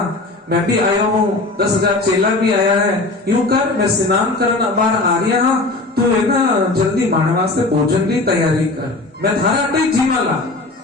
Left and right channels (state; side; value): quieter; right; 3.1 dB